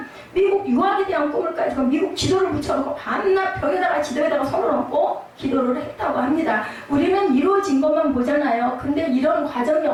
미국 유학에 대한 꿈을 가지고 미국 지도를 붙여놓고 밤낮 벽에다가 지도에다가 손을 얹고 기도를 했다고 합니다. 우리는 이루어진 것만 보잖아요. 근데 이런 과정이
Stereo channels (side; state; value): both; identical; correlation 1.00